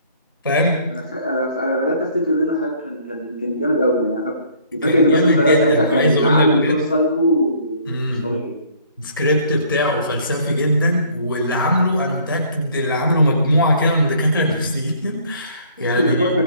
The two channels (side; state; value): both; inverted; correlation -0.58